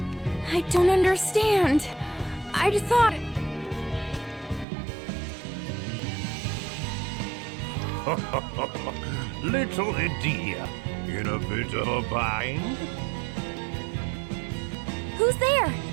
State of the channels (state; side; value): drops out; left; at 4.7 s